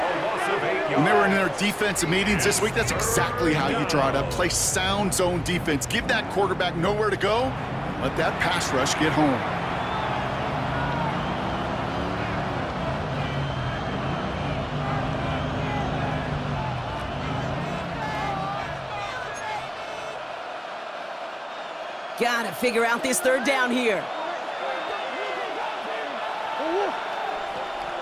When they were in their defensive meetings this week, that's exactly how you draw it up. Play sound zone defense. Give that quarterback nowhere to go. Let that pass rush get home. Gotta figure out this third down here.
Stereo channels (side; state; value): both; identical; correlation 1.00